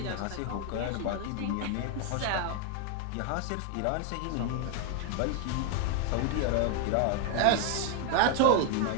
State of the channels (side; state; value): both; different; correlation 0.01